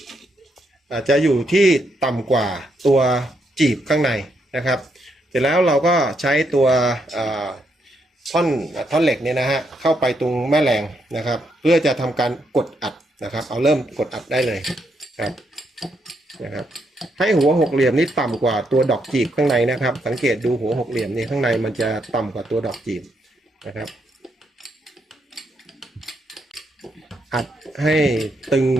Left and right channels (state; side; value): normal; both; correlation 0.78